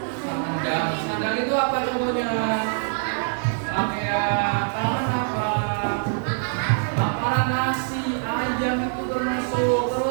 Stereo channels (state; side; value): silent; left; digital silence